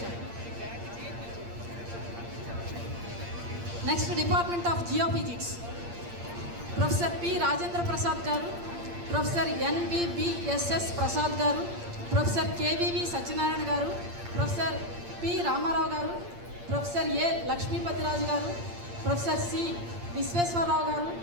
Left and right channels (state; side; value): late; left; 8.7 ms